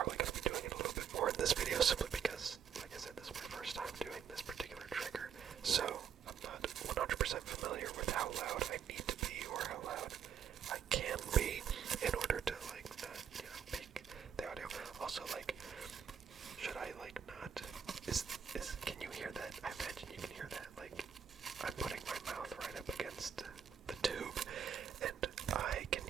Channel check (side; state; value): left; quieter; 7.8 dB